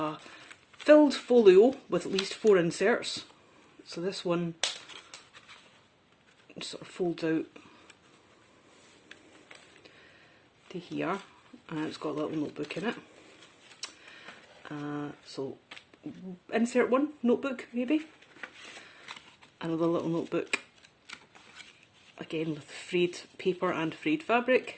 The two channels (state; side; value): identical; both; correlation 1.00